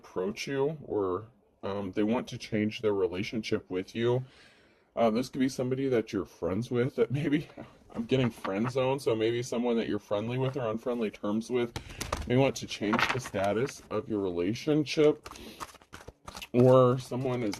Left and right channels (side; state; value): both; identical; correlation 1.00